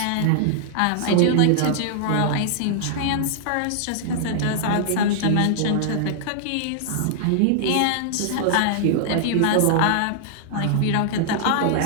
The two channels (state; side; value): different; both; correlation -0.01